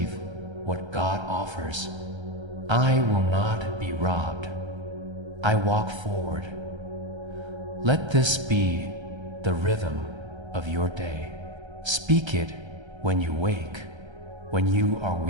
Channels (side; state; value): left; late; 1.3 ms